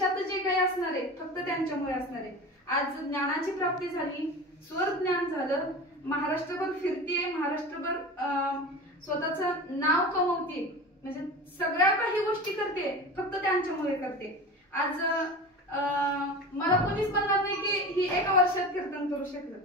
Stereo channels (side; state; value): both; normal; correlation 0.31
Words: जे काही असणार आहे फक्त त्यांच्यामुळे असणार आहे। आज ज्ञानाची प्राप्ती झाली, स्वर ज्ञान झालं, महाराष्ट्रभर फिरतीये, महाराष्ट्रभर स्वतःचं नाव कमवते, म्हणजे सगळ्या काही गोष्टी करते फक्त त्यांच्यामुळे करते। आज मला कोणीच म्हणणार नाही की ही एका वर्षात कीर्तन करू शकलं,